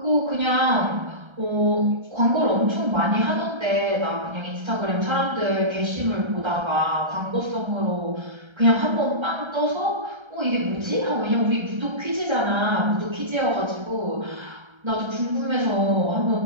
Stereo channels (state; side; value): late; left; 1.3 ms